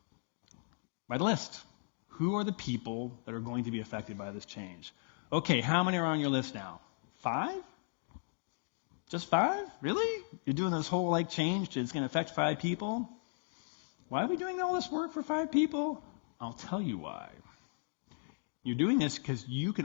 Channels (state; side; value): silent; right; digital silence